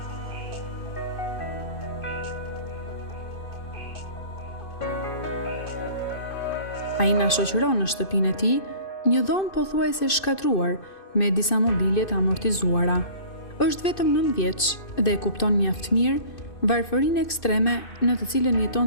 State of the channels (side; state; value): right; late; 2.6 ms